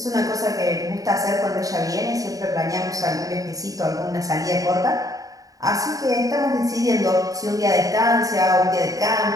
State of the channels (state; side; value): late; left; 0.17 ms